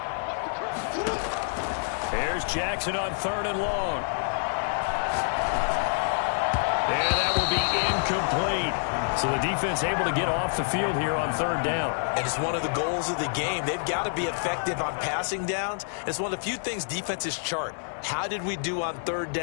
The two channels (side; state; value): right; silent; digital silence